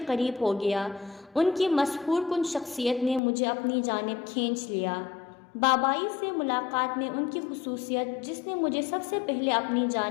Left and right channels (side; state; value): right; drops out; at 3.2 s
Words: ہو گیا۔ ان کی مسحور کن شخصیت نے مجھے اپنی جانب کھینچ لیا۔ بابائی سے ملاقات میں ان کی خصوصیت جس نے مجھے سب سے پہلے اپنی